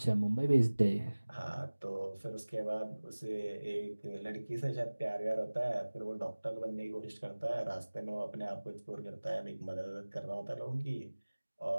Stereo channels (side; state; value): both; inverted; correlation -1.00